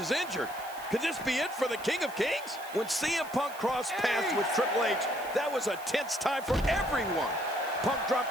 injured. Could this be it for the King of Kings? When CM Punk crossed paths with Triple H, that was a tense time for everyone. Punk dropped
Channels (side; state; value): right; noise; hiss, 18 dB below the sound